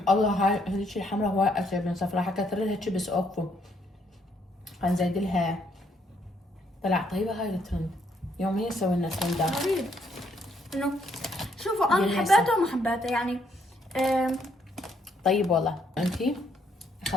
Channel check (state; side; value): normal; both; correlation 0.71